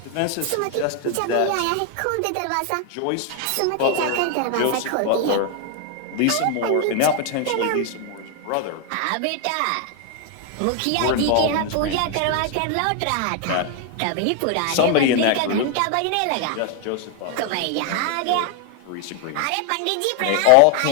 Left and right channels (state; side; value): different; both; correlation 0.00